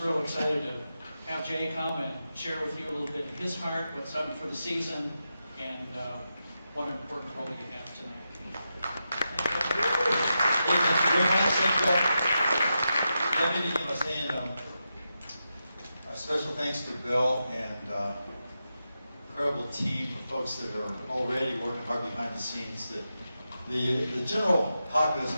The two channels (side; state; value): both; inverted; correlation -0.88